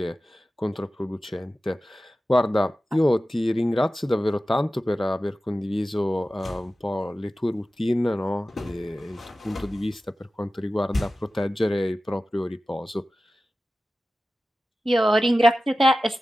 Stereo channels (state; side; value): normal; both; correlation 0.94